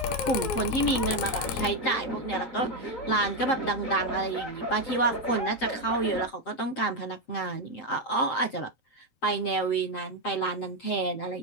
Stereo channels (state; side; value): late; right; 7.7 ms